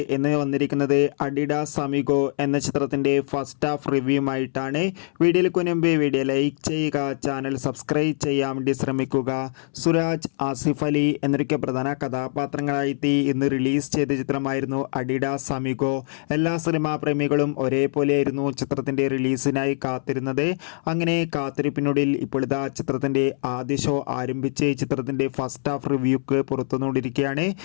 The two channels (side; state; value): right; silent; 63 dB below the other